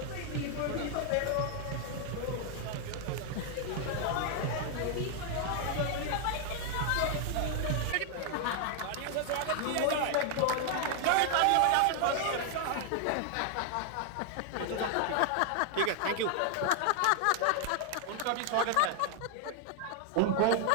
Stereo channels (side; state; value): both; different; correlation 0.00